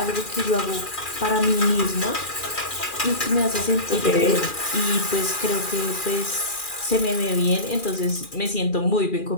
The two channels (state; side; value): late; right; 2.4 ms